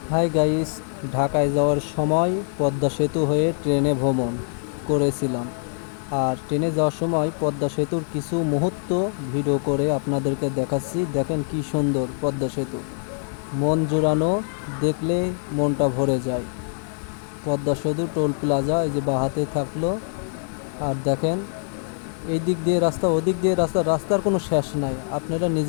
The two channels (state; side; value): silent; right; 60 dB below the other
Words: হাই গাইস, ঢাকায় যাওয়ার সময় পদ্মা সেতু হয়ে ট্রেনে ভ্রমণ করেছিলাম। আর ট্রেনে যাওয়ার সময় পদ্মা সেতুর কিছু মুহূর্ত ভিডিও করে আপনাদেরকে দেখাচ্ছি। দেখেন কি সুন্দর পদ্মা সেতু, মন জুড়ানো, দেখলে মনটা ভরে যায়। পদ্মা সেতু টোল প্লাজা এই যে বাহাতে থাকলো। আর দেখেন এই দিক দিয়ে রাস্তা, ওদিক দিয়ে রাস্তা, রাস্তার কোনো শেষ নাই, আপনারা